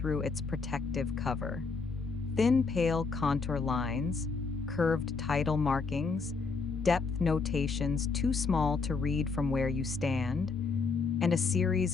its protective cover. Thin, pale contour lines, curved tidal markings, depth notations too small to read from where you stand, and a series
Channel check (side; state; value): right; quieter; 4.6 dB